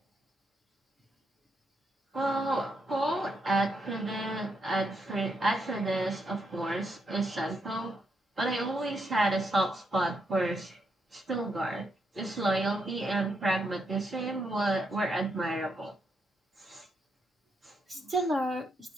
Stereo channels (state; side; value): normal; both; correlation 0.79